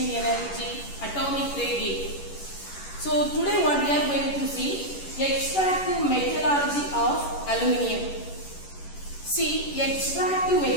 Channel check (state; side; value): late; right; 11 ms